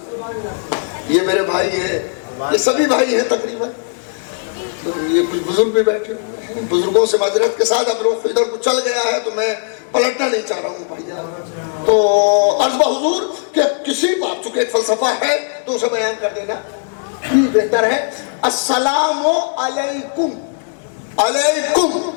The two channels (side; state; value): right; silent; 68 dB below the other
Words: یہ میرے بھائی ہیں، یہ سبھی بھائی ہیں تقریباً، یہ کچھ بزرگ بھی بیٹھے ہوئے ہیں، بزرگوں سے معذرت کے ساتھ اب رخ ادھر کو چل گیا ہے تو میں پلٹنا نہیں چاہ رہا ہوں بھائی۔ تو عرض بحضور کہ کسی بات، چونکہ ایک فلسفہ ہے تو اسے بیان کر دینا بہتر ہے۔ السلام علیکم، علیکم،